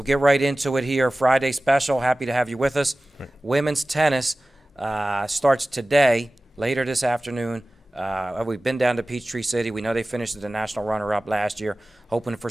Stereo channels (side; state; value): both; normal; correlation 0.97